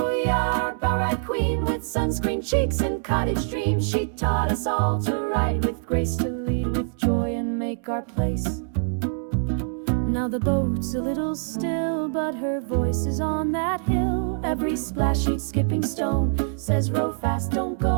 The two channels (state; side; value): silent; left; digital silence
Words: yeah, our bow ride queen, with sunscreen cheeks and cottage dreams. She taught us all to ride with grace, to lead with joy and make our place. Now the boat's a little still, but her voice is on that hill. Every splash she'd skipping stone says row fast, don't